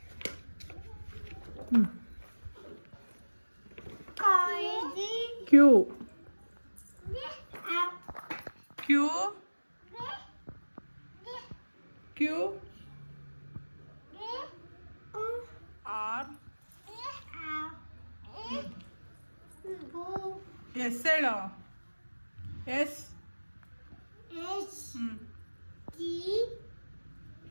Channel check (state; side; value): inverted; both; correlation -1.00